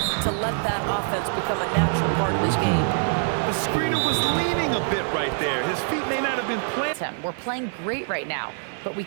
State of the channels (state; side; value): silent; left; digital silence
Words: to let that offense become a natural part of his game. The screener was leaning a bit right there. His feet may not have been planted. We're playing great right now, but we